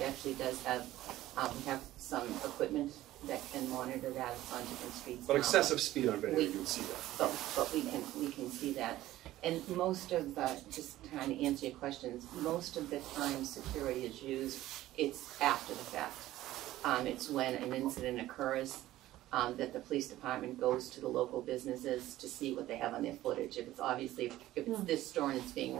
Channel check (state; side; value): quieter; left; 15.1 dB